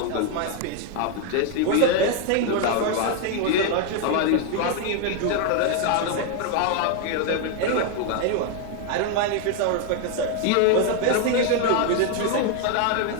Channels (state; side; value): different; both; correlation 0.01